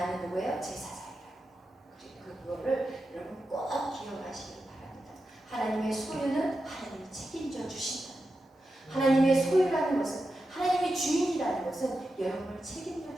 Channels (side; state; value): both; normal; correlation 0.90